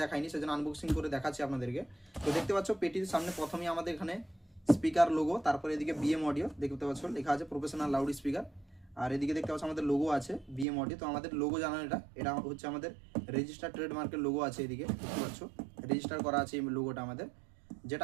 দেখাইনি, সেজন্য আনবক্সিং করে দেখাচ্ছি আপনাদেরকে। তো দেখতে পাচ্ছ পেটির সামনে প্রথমেই আমাদের এখানে স্পিকার লোগো, তারপরে এদিকে বিএম অডিও দেখতে পাচ্ছ লেখা আছে প্রফেশনাল লাউড স্পিকার। আর এদিকে দেখতে পাচ্ছ আমাদের লোগো আছে বিএম অডিও। তো আমাদের লোগো জানান, এটা হচ্ছে আমাদের রেজিস্টার ট্রেডমার্কের লোগো আছে, এদিকে দেখতে পাচ্ছ রেজিস্টার করা আছে এই লোগোটা আমাদের।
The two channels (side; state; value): left; drops out; at 10.7 s